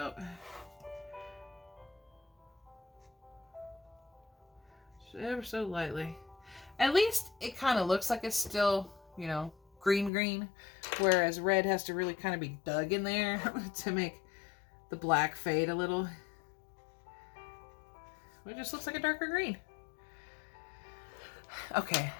Ever so lightly. At least it kind of looks like it's still, you know, green, whereas red has to really kind of be dug in there to make the black fade a little. It just looks like a darker green. Okay,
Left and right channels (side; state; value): right; drops out; at 10.1 s